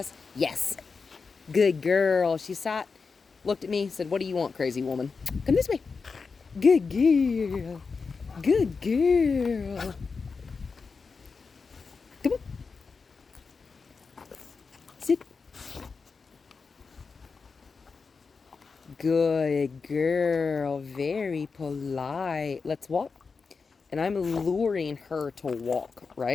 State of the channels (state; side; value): quieter; right; 4.9 dB